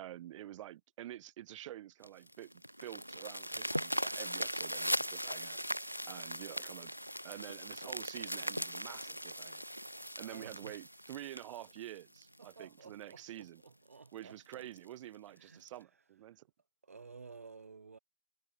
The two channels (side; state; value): both; inverted; correlation -0.82